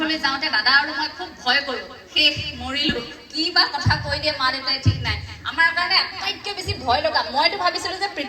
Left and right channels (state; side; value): identical; both; correlation 1.00